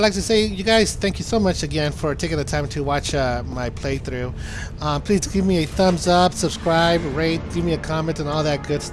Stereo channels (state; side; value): identical; both; correlation 1.00